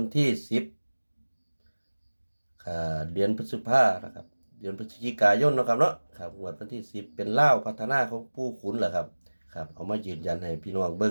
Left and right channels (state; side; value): inverted; both; correlation -1.00